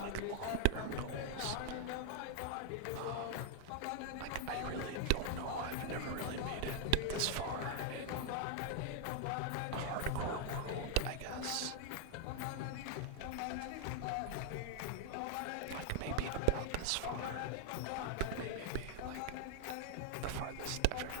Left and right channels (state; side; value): different; both; correlation 0.00